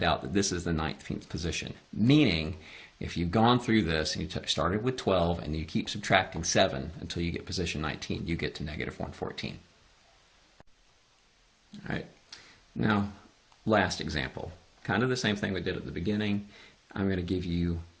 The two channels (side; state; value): both; identical; correlation 1.00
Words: out that this is the 19th position. Meaning, if you've gone through this and you started with 12 and you keep subtracting 7 until you get position 19, you get to negative 114. All right. Now, last example. Kind of the same thing we did at the beginning. I'm going to give you